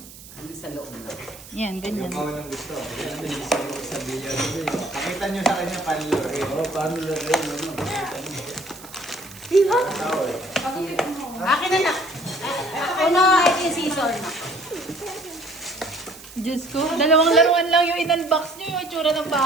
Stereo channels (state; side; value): noise; right; hiss, 18 dB below the sound